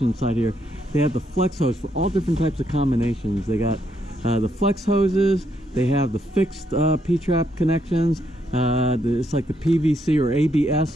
inside here. They have the flex hose for all different types of combinations. They got the flex hoses, they have the fixed P-trap connections, it's like the PVC or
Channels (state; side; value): normal; both; correlation 0.75